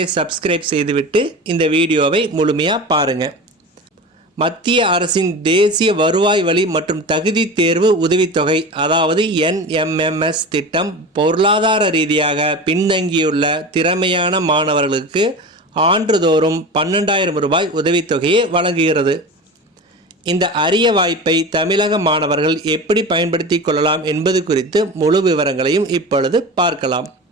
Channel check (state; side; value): normal; both; correlation 0.30